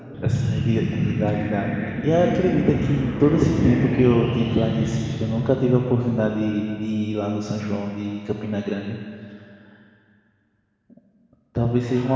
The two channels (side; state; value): both; identical; correlation 1.00